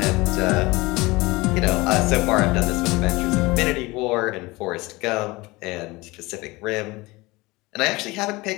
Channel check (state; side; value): quieter; right; 22.2 dB